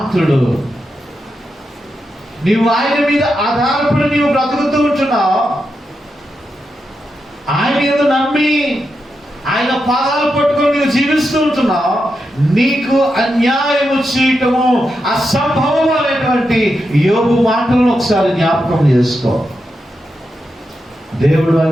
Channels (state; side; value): normal; both; correlation 0.86